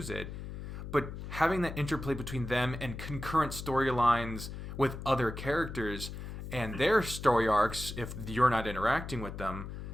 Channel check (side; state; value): left; noise; hum, 8 dB below the sound